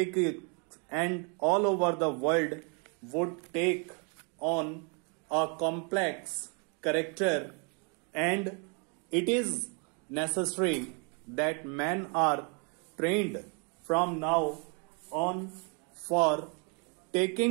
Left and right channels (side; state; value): left; quieter; 36.5 dB